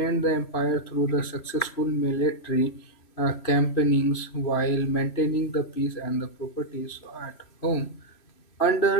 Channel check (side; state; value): right; late; 3.0 ms